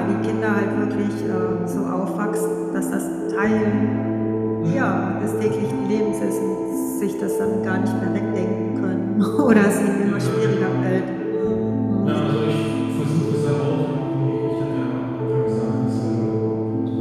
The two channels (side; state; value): both; identical; correlation 1.00